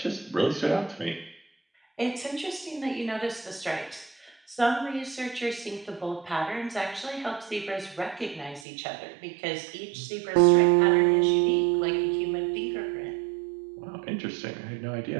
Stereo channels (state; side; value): drops out; left; at 8.7 s